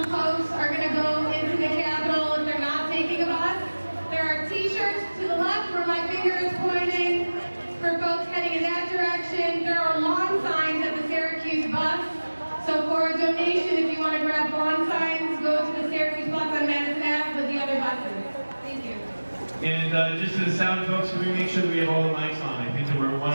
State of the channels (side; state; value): both; inverted; correlation -1.00